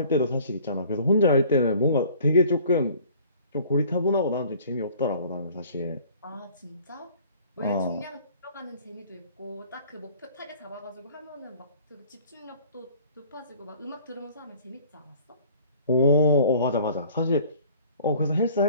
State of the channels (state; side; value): inverted; both; correlation -0.51